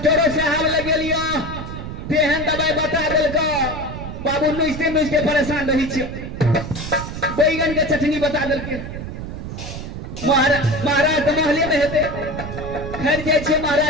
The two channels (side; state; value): right; noise; rumble, 8 dB below the sound